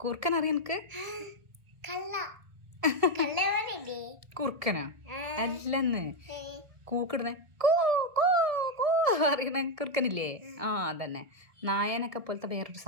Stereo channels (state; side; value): late; left; 1.9 ms